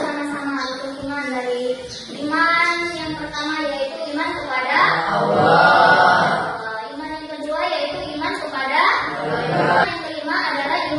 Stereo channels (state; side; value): identical; both; correlation 1.00